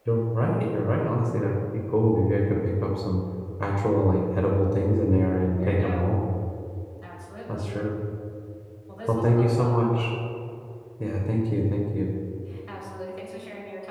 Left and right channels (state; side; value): identical; both; correlation 1.00